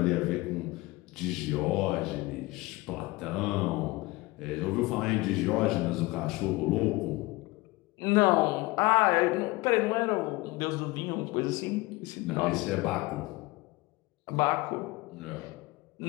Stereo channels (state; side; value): quieter; right; 21.5 dB